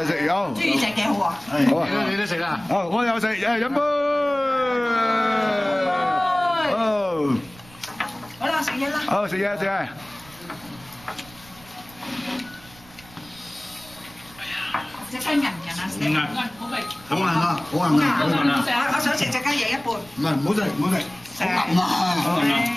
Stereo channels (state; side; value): noise; right; rumble, 23 dB below the sound